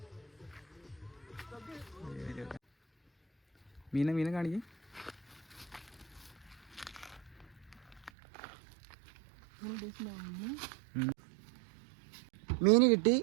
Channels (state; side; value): drops out; left; at 8.1 s